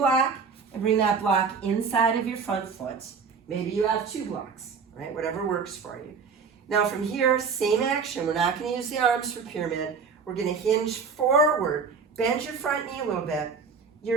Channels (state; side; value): quieter; left; 5.5 dB